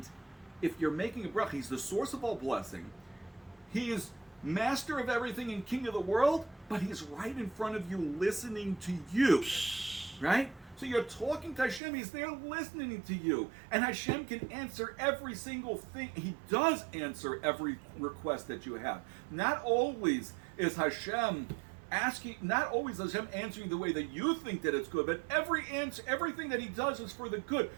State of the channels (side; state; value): left; drops out; at 11.8 s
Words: if you're making a bracha, He's the source of all blessing. He is master of everything and king of the world, but He's right in front of you listening to you, right? So you're talking to Hashem, He's there listening to you. And Hashem can answer every single thing. He does answer every request that you have. Not always is Hashem answering the way that you think that it's good, but everything that He does is for the good.